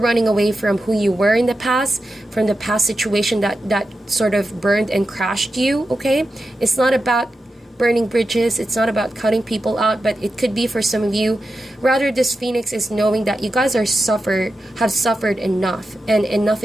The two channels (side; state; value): both; normal; correlation 0.90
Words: away from who you were in the past, from the past situation that sort of burned and crashed you, okay? It's not about burning bridges, it's not about cutting people out, but it could be for some of you. Rather, this Phoenix is knowing that you guys have suffered enough, and enough